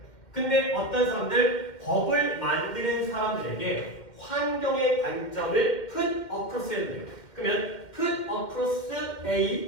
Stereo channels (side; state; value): right; late; 2.0 ms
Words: 근데 어떤 사람들 법을 만드는 사람들에게 환경의 관점을 put across 해야 돼요. 그러면 put across